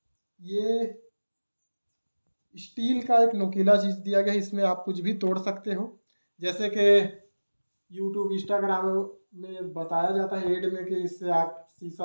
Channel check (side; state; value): both; inverted; correlation -1.00